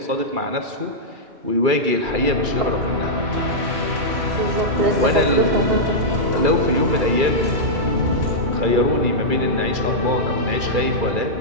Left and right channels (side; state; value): left; late; 2.3 ms